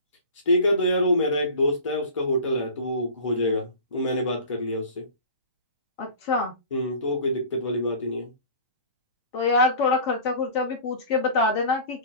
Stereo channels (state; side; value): inverted; both; correlation -0.39